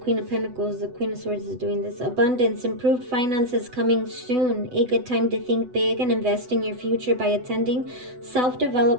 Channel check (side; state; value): left; late; 8.0 ms